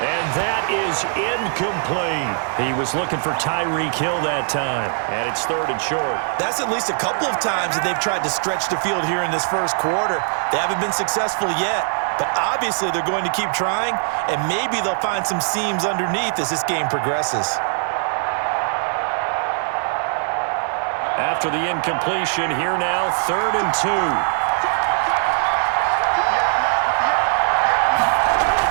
And that is incomplete. He was looking for Tyreek Hill that time. And it's 3rd and short. That's at least a couple of times that they've tried to stretch the field here in this first quarter. They haven't been successful yet. But obviously they're going to keep trying. And maybe they'll find some seams underneath as this game progresses. After the incompletion, here now, 3rd and 2.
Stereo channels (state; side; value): silent; left; digital silence